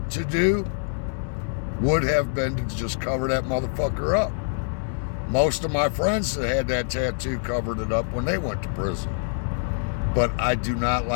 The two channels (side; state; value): right; silent; digital silence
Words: to do would have been to just cover that motherfucker up. Most of my friends that had that tattoo covered it up when they went to prison. But I do not